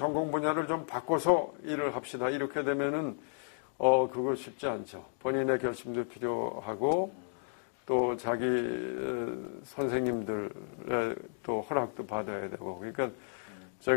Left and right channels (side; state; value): right; silent; digital silence